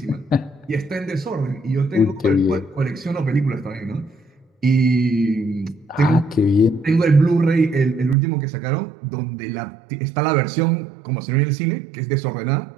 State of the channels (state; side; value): drops out; left; at 8.2 s